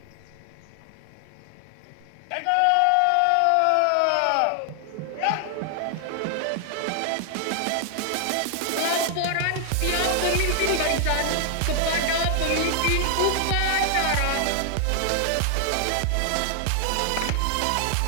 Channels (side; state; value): both; different; correlation 0.00